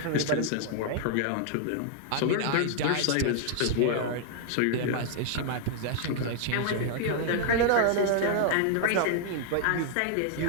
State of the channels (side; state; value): both; different; correlation 0.00